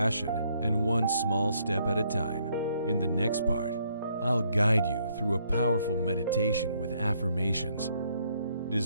and one small step at a time. In the next part, I'll guide you through a powerful meditation with affirmations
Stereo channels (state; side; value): inverted; both; correlation -0.71